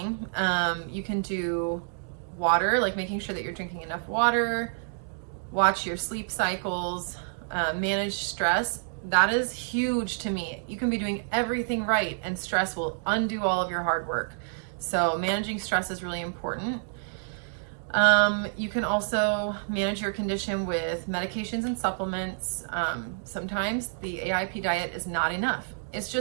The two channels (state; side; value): silent; left; digital silence